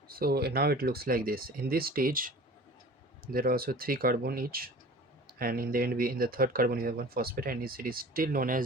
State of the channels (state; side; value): normal; both; correlation 0.42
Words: So now it looks like this. In this stage, there are also 3 carbon each, and in the end, in the third carbon we have one phosphate, and it is still known